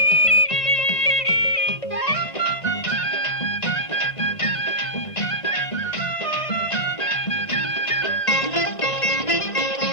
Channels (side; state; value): right; late; 1.9 ms